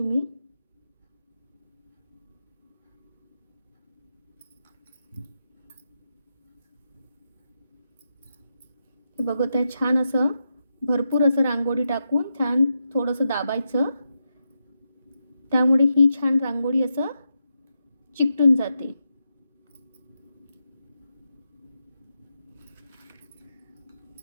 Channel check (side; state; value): both; inverted; correlation -0.86